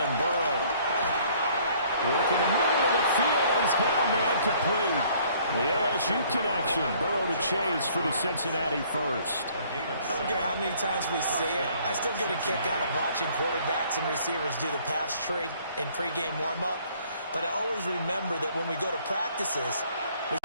Burrow. Working the middle of the field, and he's got a man complete. The LSU connection, Burrow to Chase for the Cincinnati first. I don't care how many times we see it. I still get a kick out of watching quarterbacks and receivers do the pass tree in pregame warm-up. But I always remember that when we go to practices, we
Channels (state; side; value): inverted; both; correlation -0.59